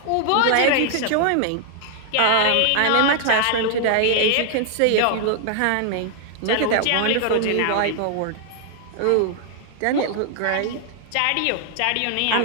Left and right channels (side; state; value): both; different; correlation 0.00